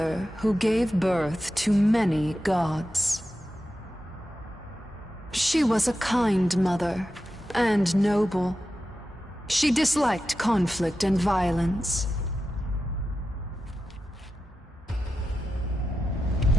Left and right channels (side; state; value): both; normal; correlation 0.91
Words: who gave birth to many gods. She was a kind mother, and noble. She disliked conflict and violence.